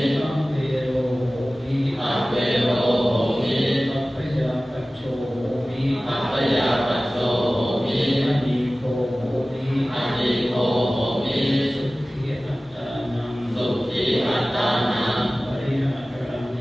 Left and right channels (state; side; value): normal; both; correlation 0.97